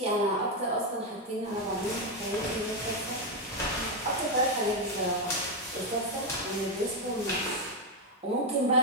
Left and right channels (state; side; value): normal; both; correlation 0.05